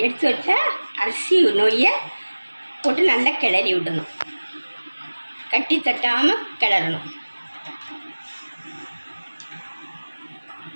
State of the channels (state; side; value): inverted; both; correlation -1.00